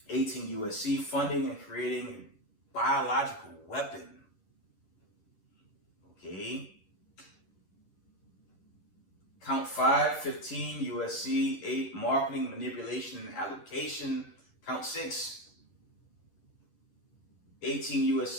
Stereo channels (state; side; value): late; right; 11 ms